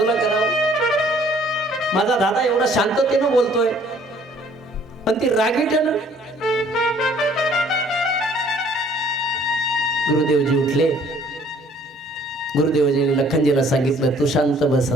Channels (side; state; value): both; normal; correlation 0.58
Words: करावं. माझा दादा एवढा शांततेनं बोलतोय पण ती रागीटन. गुरुदेवजी उठले. गुरुदेवजीने लखनजीला सांगितलं, तू शांत बस